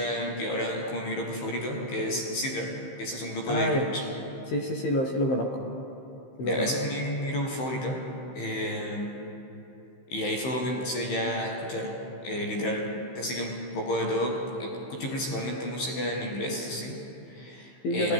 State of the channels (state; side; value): late; right; 15 ms